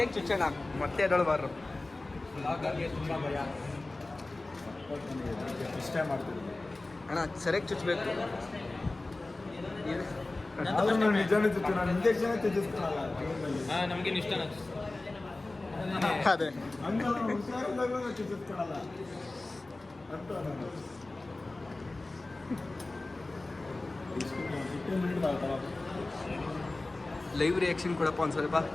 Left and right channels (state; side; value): quieter; right; 3.0 dB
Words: ಚುಚ್ಚೋಣ ಮತ್ತೆ ಎದೊಳಬಾರ್ದು. ಇಷ್ಟೇ ಮಾಡ್ತೀವಿ ಅಣ್ಣ ಸರಿಯಾಗಿ ಚುಚ್ಚಬೇಕು. ನಿಜಾನೇ ಚುಚ್ಚು. ನಾನು ಇಂಜೆಕ್ಷನ್ ಚುಚ್ಚಿಸ್ತಾನಲ್ಲ ನಮಗೇನು ಇಷ್ಟ ಅದೇ ಹುಷಾರಿದ್ದಾಗ ಚುಚ್ಚಿಸ್ತಾನಲ್ಲ ಅಂತ ಲೈವ್ ರಿಯಾಕ್ಷನ್ ಕೊಡಪ್ಪ ಒಂದು ಸ್ವಲ್ಪ.